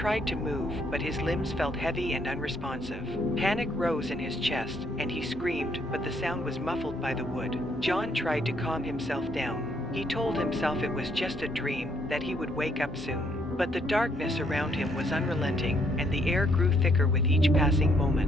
to move, but his limbs felt heavy and unresponsive. Panic rose in his chest, and he screamed, but the sound was muffled by the wood. John tried to calm himself down. He told himself it was just a dream, that he would wake up soon. But the darkness around him was unrelenting, and the air grew thicker with each passing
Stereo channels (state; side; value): normal; both; correlation 0.70